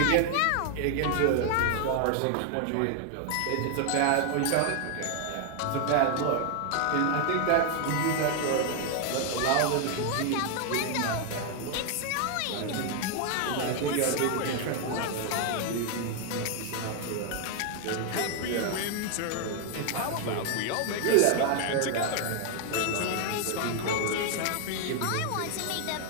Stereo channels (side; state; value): both; different; correlation 0.00